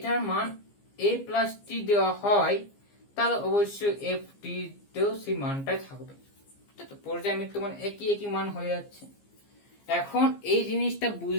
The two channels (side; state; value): right; late; 15 ms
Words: মান a প্লাস টি দেওয়া হয় তাহলে অবশ্যই এফ টি তেও সেই মানটাই থাকবে, তো পর্যায়বৃত্ত মানে একই মান হয়ে যাচ্ছে। এখন এই জিনিসটা